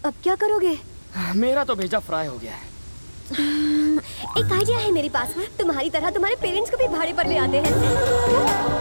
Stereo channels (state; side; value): inverted; both; correlation -1.00